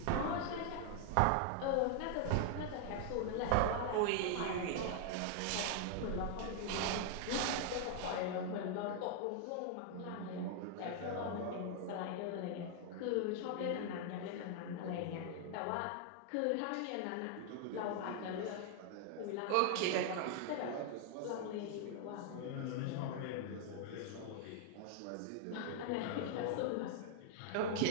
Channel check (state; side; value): different; both; correlation 0.00